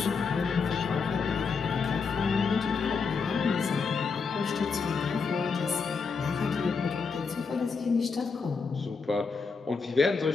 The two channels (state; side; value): quieter; right; 5.0 dB